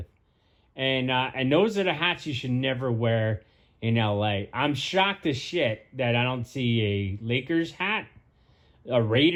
And those are the hats you should never wear in LA. I'm shocked as shit that I don't see a Lakers hat, a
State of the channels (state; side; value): identical; both; correlation 1.00